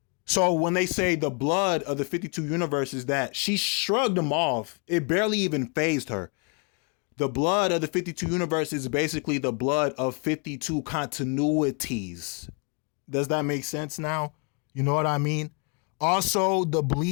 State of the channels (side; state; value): right; quieter; 36.4 dB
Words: So when they say the blood of the 52 universes, that she shrugged them off. It barely even fazed her. The blood of the 52 universes is basically the blood of 52 continuities. Does that make sense now? You know what I mean? Also, the